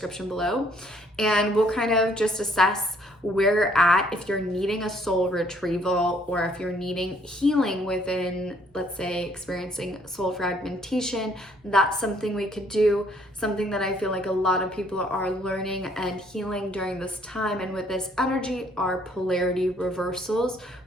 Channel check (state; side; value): normal; both; correlation 0.64